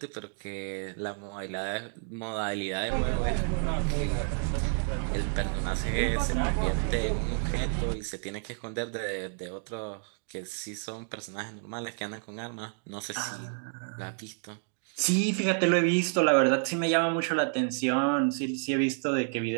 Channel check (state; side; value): silent; left; 58 dB below the other